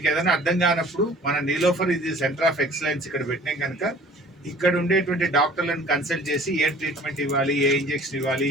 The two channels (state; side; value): normal; both; correlation 0.49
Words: ఏదైనా అర్థం కానప్పుడు మన నీలోఫర్ ఇది సెంటర్ ఆఫ్ ఎక్సలెన్స్ ఇక్కడ పెట్టినాం కనుక ఇక్కడ ఉండేటువంటి డాక్టర్లను కన్సల్ట్ చేసి ఏ ట్రీట్మెంట్ ఇవ్వాలి, ఏ ఇంజెక్షన్ ఇవ్వాలి,